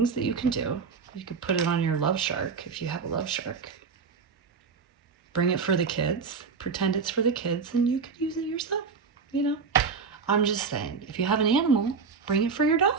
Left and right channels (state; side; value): quieter; left; 5.5 dB